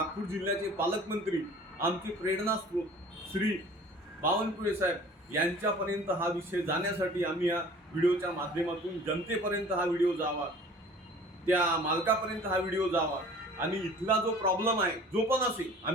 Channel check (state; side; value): normal; both; correlation 0.47